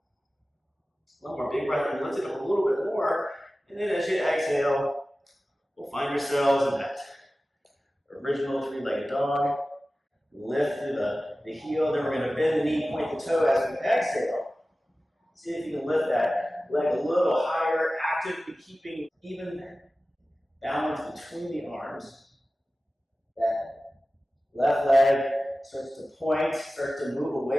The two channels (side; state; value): both; normal; correlation 0.96